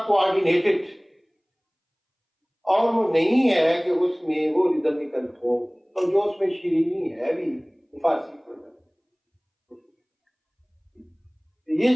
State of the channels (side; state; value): both; identical; correlation 1.00